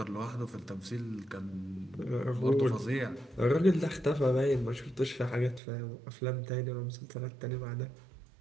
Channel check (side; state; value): left; drops out; at 5.6 s